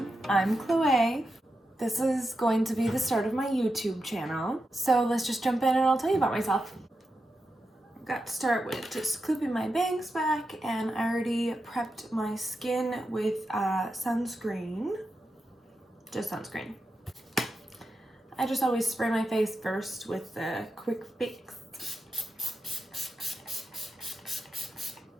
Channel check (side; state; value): both; normal; correlation 0.88